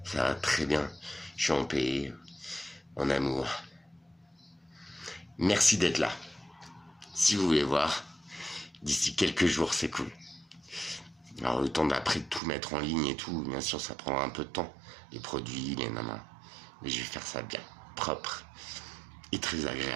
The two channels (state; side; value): drops out; left; at 12.4 s